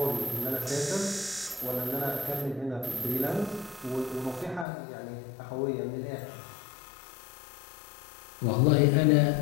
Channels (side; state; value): right; drops out; at 4.7 s